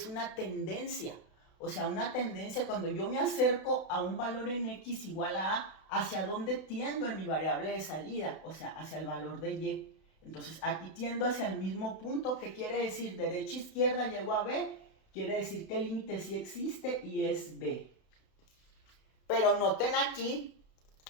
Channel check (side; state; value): right; late; 32 ms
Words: una tendencia. O sea, una tendencia cuando yo me acerco a un valor en X igual a A, ¿hacia dónde tiendo en mi variable de salida? O sea, hacia el valor de Y. Entonces, aquí tiendo hacia el mismo punto. ¿Qué quiere decir? Derecha, izquierda, llego a B. Quiere decir que el límite sí existe y es B. Pero noten aquí